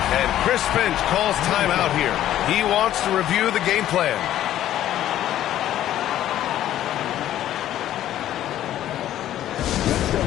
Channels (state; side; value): quieter; right; 12.4 dB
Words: And Chris Finch calls timeout here. He wants to review the game plan. Let's go,